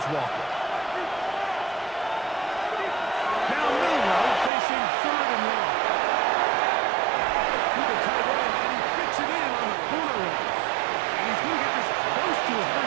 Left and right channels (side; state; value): left; drops out; at 4.5 s